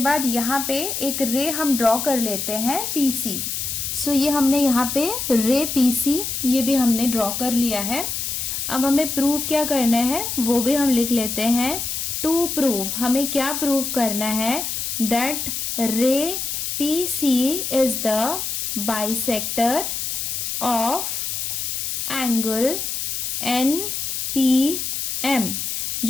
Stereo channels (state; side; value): noise; left; hiss, 3 dB below the sound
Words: यहाँ पे एक रे हम ड्रॉ कर लेते हैं PC। सो ये हमने यहाँ पे रे PC ये भी हमने ड्रॉ कर लिया है। अब हमें प्रूव क्या करना है वो भी हम लिख लेते हैं। टू प्रूव, हमें क्या प्रूव करना है, दैट रे PC is the bisector of angle NPM।